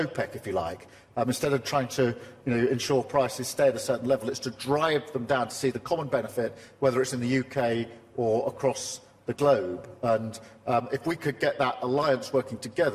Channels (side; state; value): both; identical; correlation 1.00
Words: if you like. Instead of trying to ensure prices stay at a certain level, it's to drive them down to see the common benefit, whether it's in the UK or across the globe. And if we could get that alliance working